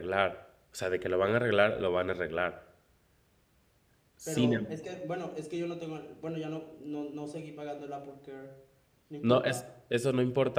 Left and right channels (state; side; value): identical; both; correlation 1.00